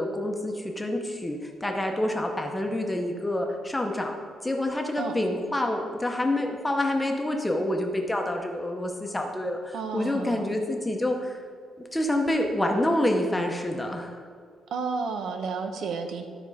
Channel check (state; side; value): normal; both; correlation 0.86